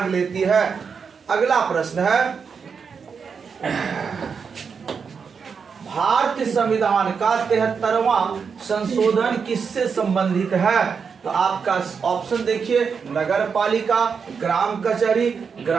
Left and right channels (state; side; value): quieter; left; 6.0 dB